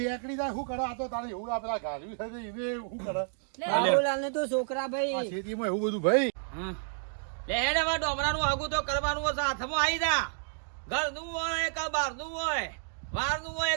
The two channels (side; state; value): left; silent; digital silence